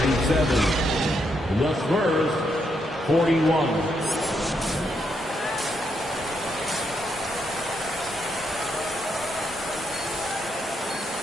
The Spurs, 41.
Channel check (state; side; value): normal; both; correlation 0.78